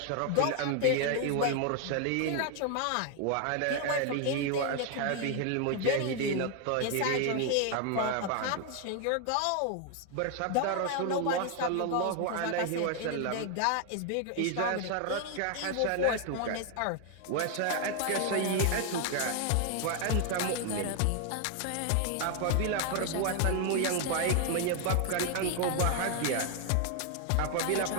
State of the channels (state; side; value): different; both; correlation 0.00